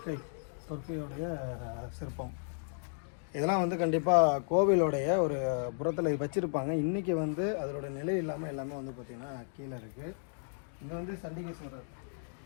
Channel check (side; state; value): right; silent; digital silence